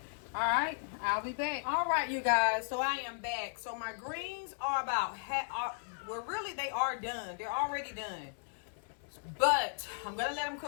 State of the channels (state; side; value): silent; right; digital silence